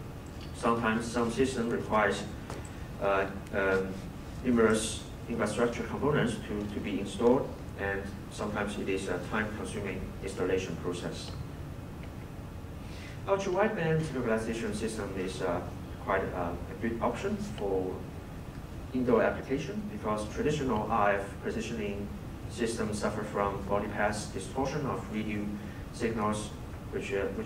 sometimes some system requires numerous infrastructure components to be installed, and sometimes it is a time-consuming installation process. Ultra-wideband localization system is quite a good option for indoor application because traditional RF positioning systems suffer from body path distortion of radio signals which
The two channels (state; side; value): identical; both; correlation 1.00